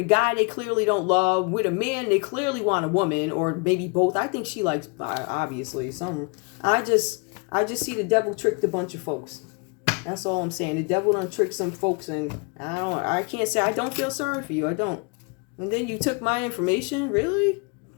guy they clearly don't love, with a man they clearly want a woman, or maybe both. I think she likes, obviously, some. I just see the devil tricked a bunch of folks. That's all I'm saying. The devil done tricked some folks, and I can't say I don't feel sorry for you. I don't. And then you took my information, really?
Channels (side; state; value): right; quieter; 33.4 dB